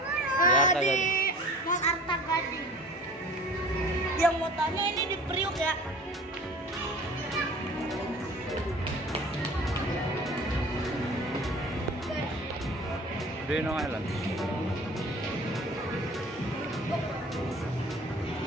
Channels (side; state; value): both; normal; correlation 0.44